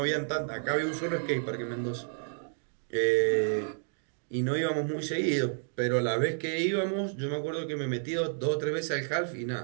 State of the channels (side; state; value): left; silent; digital silence